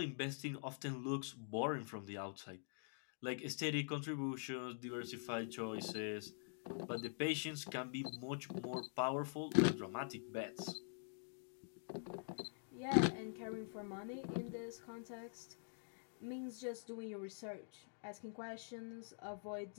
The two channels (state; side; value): silent; right; digital silence